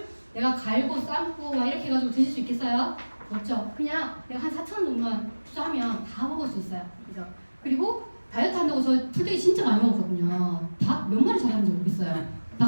내가 갈고 삶고 막 이렇게 해가지고 드실 수 있겠어요? 없죠. 그냥 내가 한 4,000원 정도만 투자하면 다 먹을 수 있어요. 그죠? 그리고 다이어트 한다고 저 풀떼기 진짜 많이 먹었거든요. 닭 몇 마리 잘하는지 모르겠어요.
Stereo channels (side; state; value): both; inverted; correlation -1.00